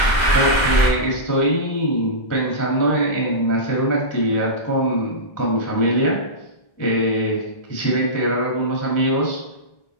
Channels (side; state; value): right; late; 1.3 ms